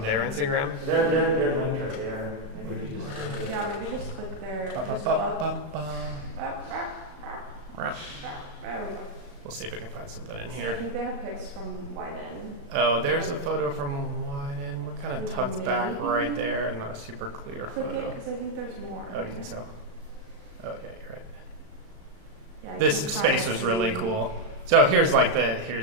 their Instagram? They're linked right there. Yeah, maybe just click their. We'll see if I can find something in I here. think they have pics from Wyden. Oh, there's a photo from Wyden. We're kind of tucked back right there, and not a super clear Click photo. it, because I think there's more. Oh, you think so? Oh, yeah, you're right. Yeah, you This can space kinda was really see- cool. So here's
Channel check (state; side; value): late; left; 35 ms